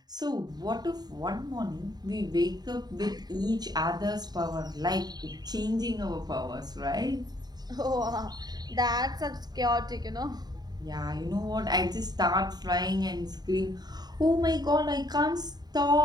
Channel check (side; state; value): left; late; 0.20 ms